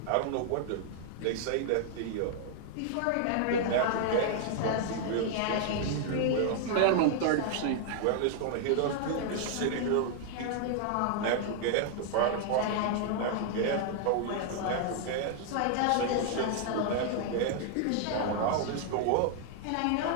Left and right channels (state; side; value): different; both; correlation 0.00